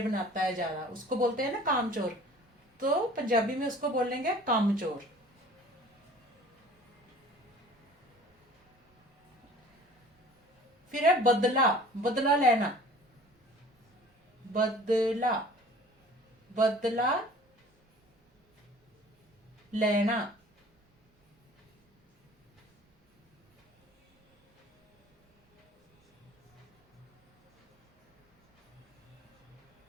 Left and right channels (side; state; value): both; normal; correlation 0.47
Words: बनाता है ज्यादा, उसको बोलते हैं ना कामचोर। तो पंजाबी में उसको बोलेंगे कामचोर। फिर है बदला। बदला लेना। बदला। बदला लेना।